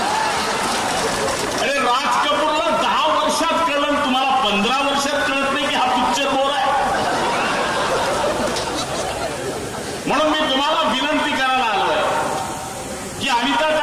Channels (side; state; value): both; identical; correlation 1.00